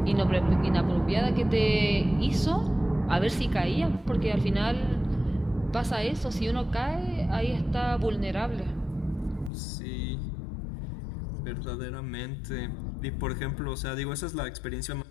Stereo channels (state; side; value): drops out; right; at 9.5 s